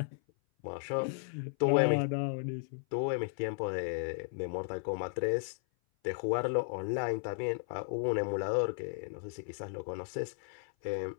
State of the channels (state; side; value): silent; right; 55 dB below the other